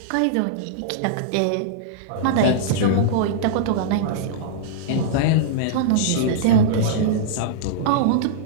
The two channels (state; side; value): different; both; correlation -0.03